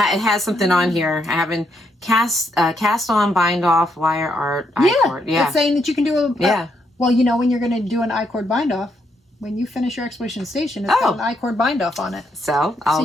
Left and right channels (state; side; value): normal; both; correlation 0.77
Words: something on here. I haven't cast on, bind off, wire art, I-cord. Yeah. It's saying that you can do well, you know when you're going to do an I-cord bind off, when you finish your exploration station, it's got an I-cord bind off on it. So I'll